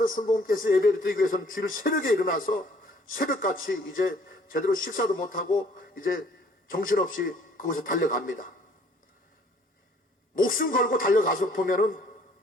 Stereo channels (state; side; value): normal; both; correlation 0.59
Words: 순복음께서 예배를 드리기 위해서는 주일 새벽에 일어나서 새벽같이 이제 제대로 식사도 못하고 이제 정신없이 그곳에 달려갑니다. 목숨 걸고 달려가서 보면은